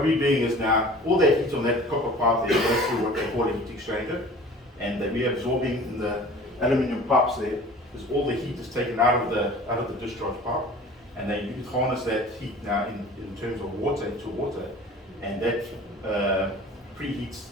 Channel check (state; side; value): normal; both; correlation 0.44